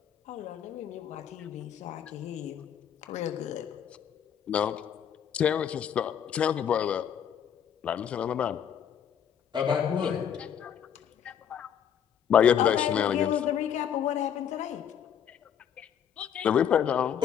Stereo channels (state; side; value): quieter; right; 8.7 dB